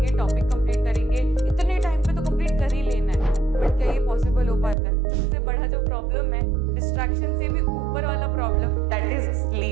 टॉपिक कंप्लीट करेंगे, इतने टाइम पे तो कंप्लीट कर ही लेना है। बट क्या ये पॉसिबल हो पाता है? सबसे बड़ा जो प्रॉब्लम है, डिस्ट्रैक्शन से भी ऊपर वाला प्रॉब्लम, दैट इज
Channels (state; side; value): drops out; left; at 4.8 s